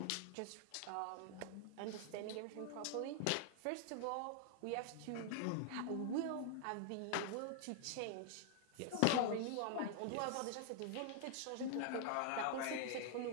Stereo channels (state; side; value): different; both; correlation 0.00